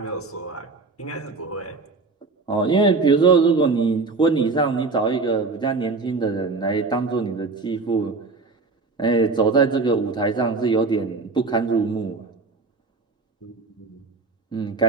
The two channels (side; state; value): left; quieter; 3.9 dB